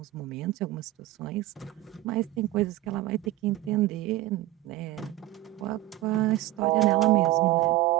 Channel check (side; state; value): left; quieter; 16.4 dB